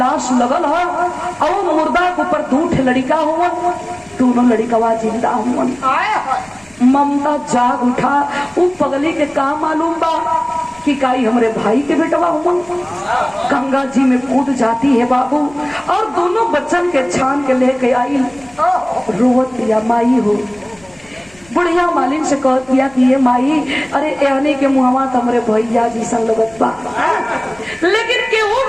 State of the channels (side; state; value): left; noise; rumble, 28 dB below the sound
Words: लगल है और मुर्दा के ऊपर 2 लड़का हुआ, दोनों लड़कवा जिंदा हुआ। ममता जाग उठा, वो पगली के का मालूम बा कि काई हमरे भाई के बेटवा हुआ। गंगा जी में कूद जाती है बाबू और दोनों बच्चन के छान के लेके आई। रोवत दिया माई हो, बुढ़िया मालिन से कह दिया कि ये माई अरे एहने के मुहवा तमरे भैया जी संग लगत बा, लेकिन केहू